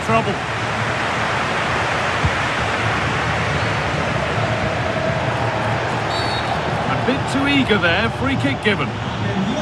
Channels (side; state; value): both; identical; correlation 1.00